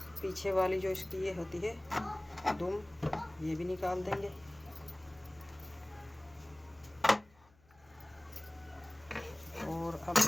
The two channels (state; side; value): noise; left; hum, 30 dB below the sound